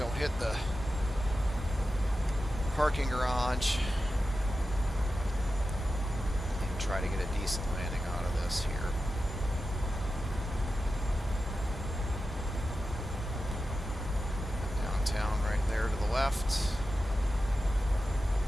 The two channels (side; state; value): both; normal; correlation 0.92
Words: hit the parking garage and try to get a decent landing out of this here. Downtown right there to the left.